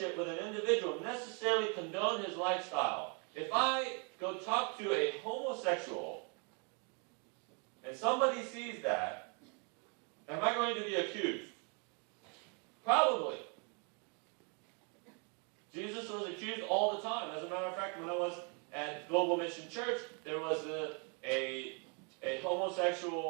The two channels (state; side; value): quieter; left; 36.4 dB